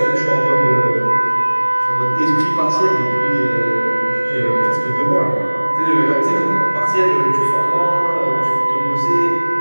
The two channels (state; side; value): inverted; both; correlation -1.00